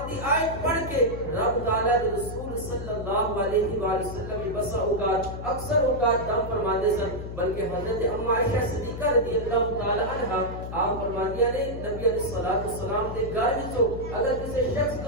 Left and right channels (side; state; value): left; noise; hum, 8 dB below the sound